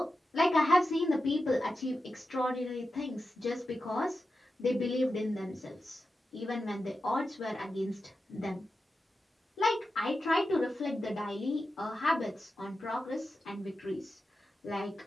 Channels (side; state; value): both; normal; correlation 0.91